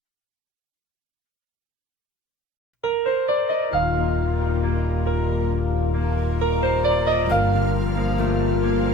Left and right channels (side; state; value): both; normal; correlation 0.53